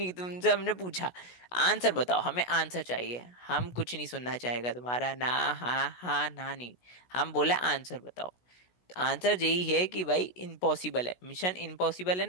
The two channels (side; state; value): right; late; 16 ms